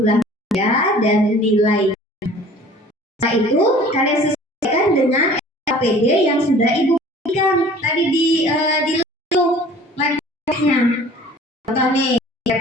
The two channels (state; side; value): normal; both; correlation 0.48